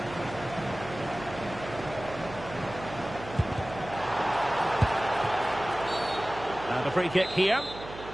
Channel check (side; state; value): right; noise; hum, 13 dB below the sound